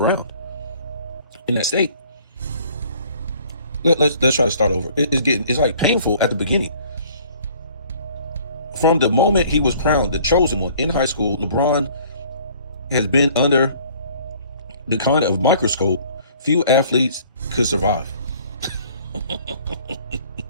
in that state. Let's try to start over. It's like painful at the beginning. From the moment he was crowned the chosen one in high school, LeBron has been under the kind of microscope few athletes could survive.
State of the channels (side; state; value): both; inverted; correlation -0.55